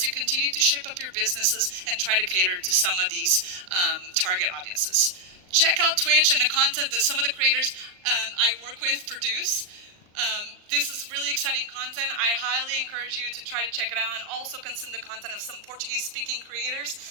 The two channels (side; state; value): left; late; 38 ms